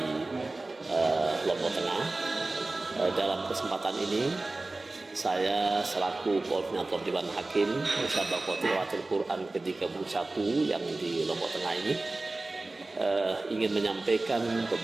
Lombok Tengah. Dalam kesempatan ini saya selaku koordinator Dewan Hakim Musabaqah Tilawatul Quran ke-31 yang di Lombok Tengah ini ingin menyampaikan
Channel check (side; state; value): left; quieter; 3.1 dB